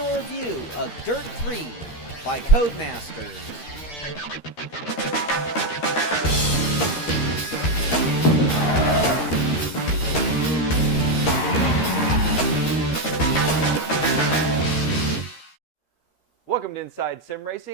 review of Dirt 3 by Codemasters. Welcome to Inside Sim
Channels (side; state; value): right; late; 13 ms